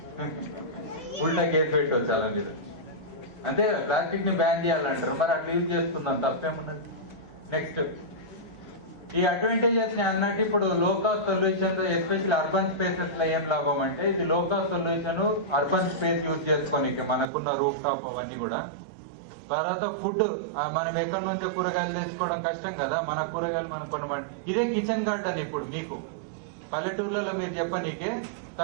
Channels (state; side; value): drops out; left; at 17.2 s